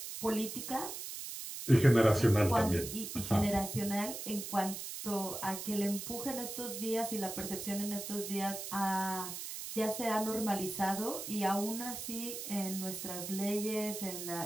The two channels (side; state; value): right; noise; hiss, 7 dB below the sound